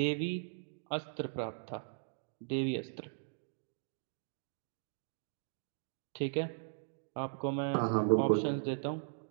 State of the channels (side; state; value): left; silent; digital silence